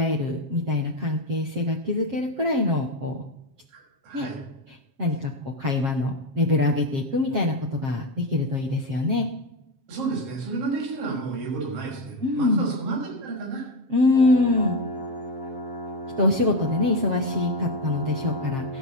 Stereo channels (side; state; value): left; late; 7.5 ms